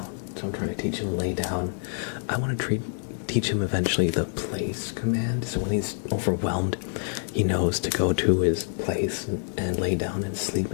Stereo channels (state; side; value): silent; right; digital silence